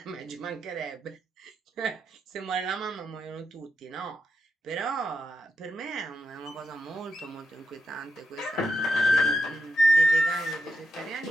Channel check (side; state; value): both; normal; correlation 0.84